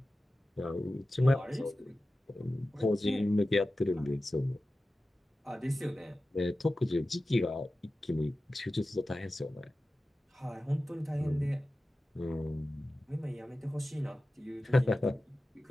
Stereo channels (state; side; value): normal; both; correlation 0.95